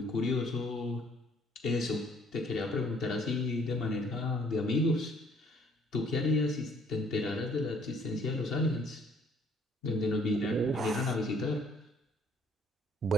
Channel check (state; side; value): normal; both; correlation 0.61